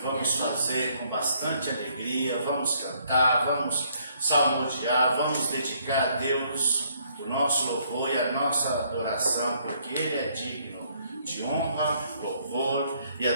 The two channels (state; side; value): inverted; both; correlation -0.67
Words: fazer com bastante alegria, vamos cantar, vamos salmodiar, vamos dedicar a Deus o nosso louvor e a nossa adoração, porque Ele é digno de honra, louvor e